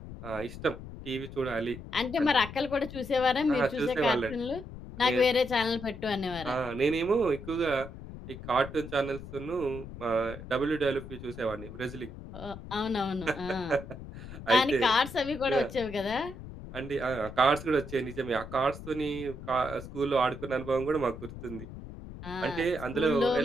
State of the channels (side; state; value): left; noise; rumble, 12 dB below the sound